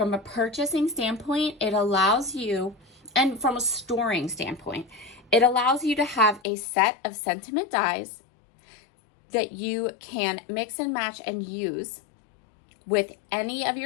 a purchasing standpoint, it allows you, and from a storing standpoint, it allows you to have a set of sentiment dies that you can mix and match and use with any of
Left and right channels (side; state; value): right; drops out; at 6.4 s